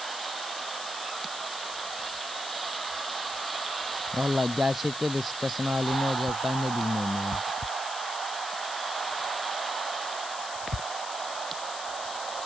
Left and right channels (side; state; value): left; noise; hiss, 8 dB below the sound